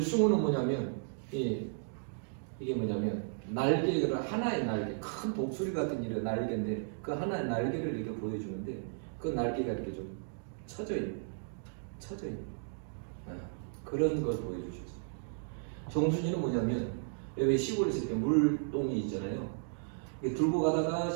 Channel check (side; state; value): left; silent; digital silence